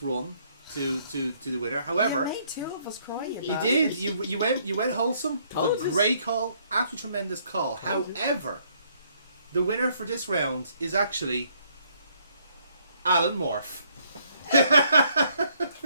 run to the winner. However, You made two of us cry. you did. You went wholesome. It was Told a us. great call. Absolutely tremendous call. However, the winner for this round is actually Alan Morph.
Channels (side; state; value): both; inverted; correlation -0.67